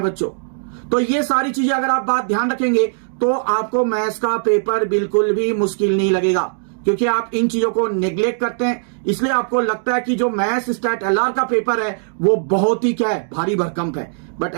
बच्चों। तो ये सारी चीजें अगर आप बात ध्यान रखेंगे तो आपको मैथ्स का पेपर बिल्कुल भी मुश्किल नहीं लगेगा, क्योंकि आप इन चीजों को नेग्लेक्ट करते हैं। इसलिए आपको लगता है कि जो मैथ्स स्टैट एलआर का पेपर है वो बहुत ही क्या है, भारी भरकम है, बट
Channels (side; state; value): left; silent; digital silence